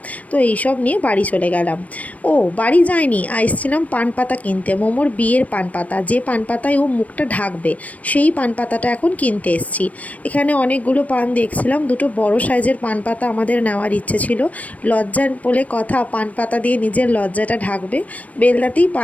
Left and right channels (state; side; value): late; right; 0.069 ms